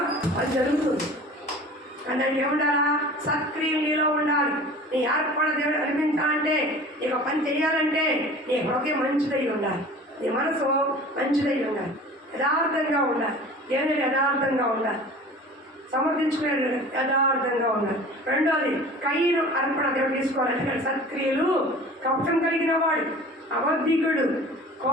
అది జరుగుతుంది. దానికి ఏముండాలా? సత్క్రియలు నీలో ఉండాలి. నీ ఏర్పడ దేవుడు అనిపించాలంటే, నీకు పని చేయాలంటే నీ హృదయం మంచిదై ఉండాలి, నీ మనసు మంచిదై ఉండాలి, యథార్థంగా ఉండాలి. దేవుని యథార్థంగా ఉండాలి, సమర్థించుకునే యథార్థంగా ఉండాలి. రెండోది కయ్యను అర్పణ దేవుడు తీసుకోవాలి. సత్క్రియలు కపటం కలిగిన వాడు, అబద్ధికుడు,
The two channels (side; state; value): both; normal; correlation 0.42